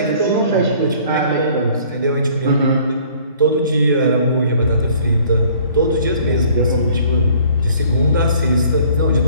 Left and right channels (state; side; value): inverted; both; correlation -0.55